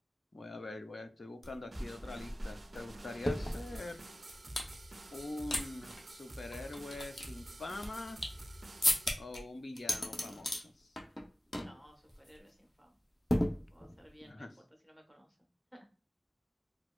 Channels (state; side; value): normal; both; correlation 0.96